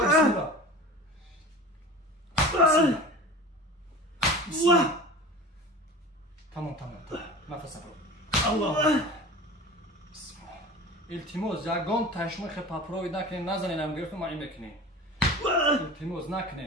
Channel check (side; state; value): both; normal; correlation 0.37